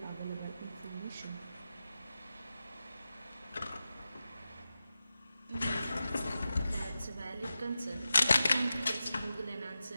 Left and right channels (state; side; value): inverted; both; correlation -0.92